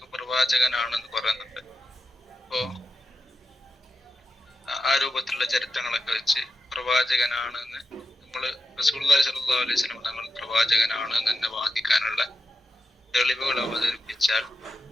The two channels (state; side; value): normal; both; correlation 0.90